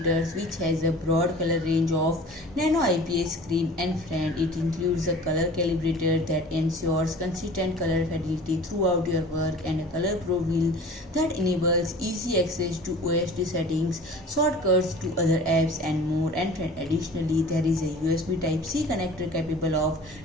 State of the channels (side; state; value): both; normal; correlation 0.43